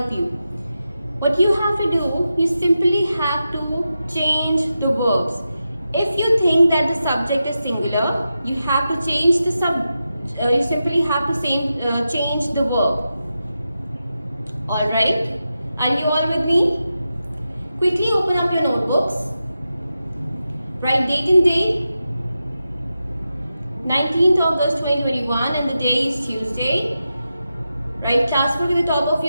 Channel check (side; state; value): both; inverted; correlation -0.90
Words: you. What you have to do, you simply have to change the verbs. If you think that the subject is singular, you have to change the you simply have to change the verb. Alright? Are you all with me? Quickly open up your notebooks. Write date and day. 19th August 2021 and the day is Tuesday. Write class work at the top of